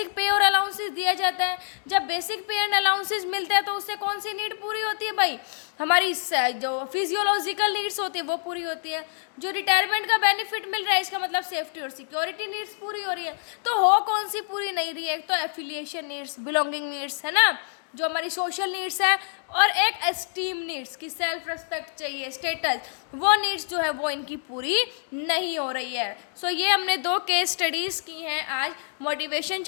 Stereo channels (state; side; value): silent; right; 61 dB below the other